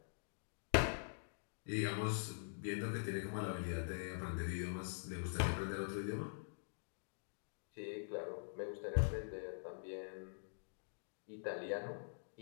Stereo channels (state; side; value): silent; right; digital silence